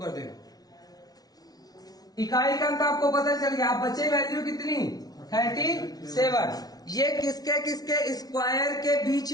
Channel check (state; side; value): late; right; 0.19 ms